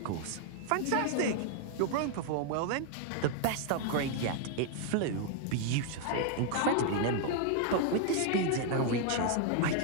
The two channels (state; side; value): different; both; correlation 0.00